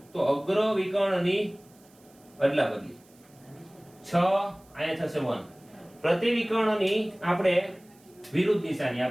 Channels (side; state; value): right; noise; hiss, 29 dB below the sound